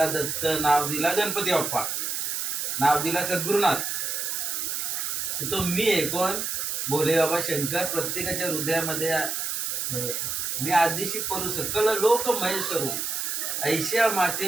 दत्त, नाव दिला गणपती बाप्पा, नाव दिला सद्गुरुनाथ. तो मी आहे कोण? भोले बाबा शंकर. प्रत्येकाच्या हृदयामध्ये मी आदिशी परू सकल लोक महेश्वरू ऐशा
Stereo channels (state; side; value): noise; right; hiss, 2 dB below the sound